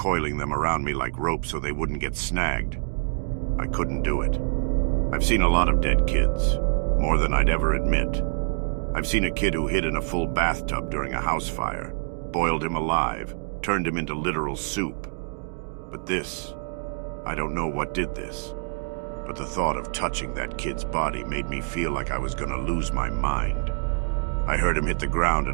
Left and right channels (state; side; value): silent; left; 61 dB below the other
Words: them around me like rope so they wouldn't get snagged. I couldn't do it. I've seen a lot of dead kids, more than I'd ever admit. I've seen a kid who hid in a full bathtub during a house fire, boiled him alive, turned him into literal soup. But this, I don't know what did this, but the thought of touching that kid's body made me feel like I was gonna lose my mind. I heard him hit the ground